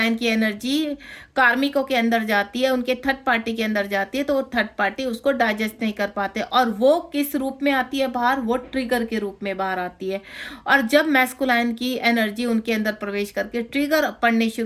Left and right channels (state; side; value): identical; both; correlation 1.00